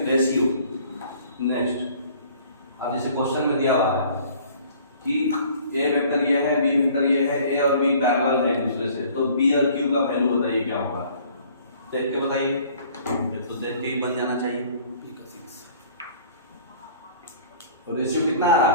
रेशियो। नेक्स्ट, अब जैसे क्वेश्चन में दिया हुआ है कि ए वेक्टर ये है, बी वेक्टर ये है, ए और बी पैरेलल है एक दूसरे से, तो बी और क्यू का वैल्यू बताइए क्या होगा। देख के बताइए, ये तो देख के ही बन जाना चाहिए। तो रेशियो कितना आ रहा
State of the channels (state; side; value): inverted; both; correlation -0.53